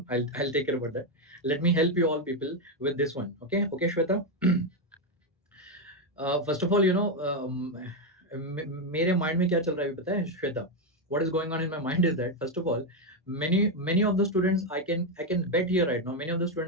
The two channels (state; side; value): normal; both; correlation 0.05